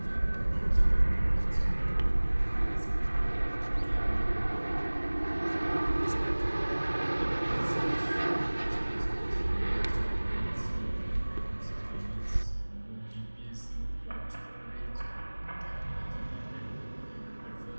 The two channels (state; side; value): inverted; both; correlation -1.00